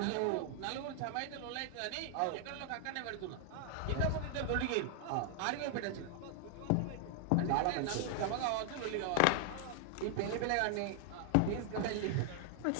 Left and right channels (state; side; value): different; both; correlation 0.00